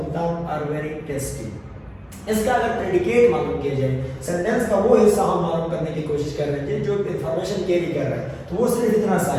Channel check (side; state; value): both; identical; correlation 1.00